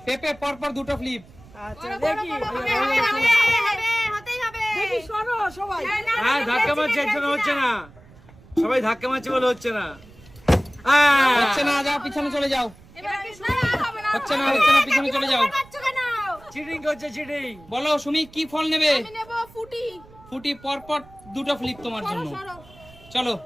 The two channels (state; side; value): noise; right; rumble, 23 dB below the sound